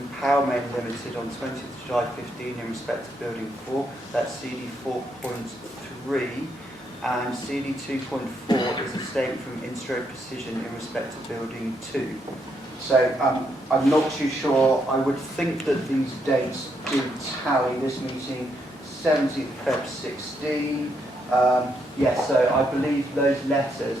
Powermain Limited on 20th of July 15 in respect to Building 4, that's CD 4.3, and CD 2.4 is a statement from Instro Precision in respect to Building 2. So I'm not too sure. I would think that these dates do tally. This meeting, 17th of Feb 16. Yes, so I believe those letters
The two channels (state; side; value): normal; both; correlation 0.77